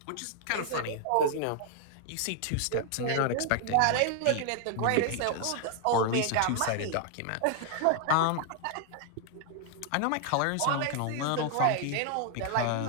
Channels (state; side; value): different; both; correlation 0.00